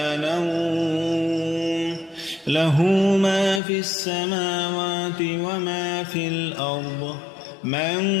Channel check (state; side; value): drops out; right; at 3.6 s